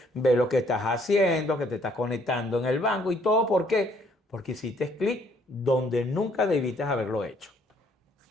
ve lo que estás haciendo, que te estás conectando en el banco y todo. ¿Por qué? Porque hiciste clic donde nunca debiste haberlo hecho.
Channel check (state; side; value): normal; both; correlation 0.65